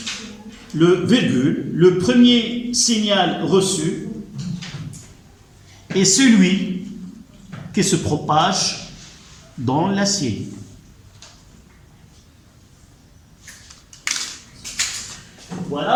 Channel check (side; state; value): both; identical; correlation 1.00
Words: le premier signal reçu est celui qui se propage dans l'acier.